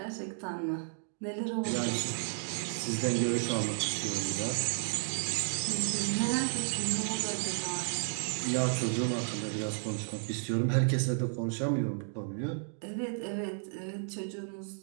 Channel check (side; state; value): left; silent; digital silence